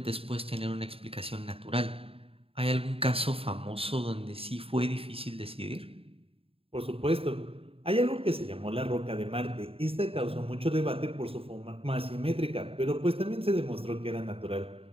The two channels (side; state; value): left; late; 0.27 ms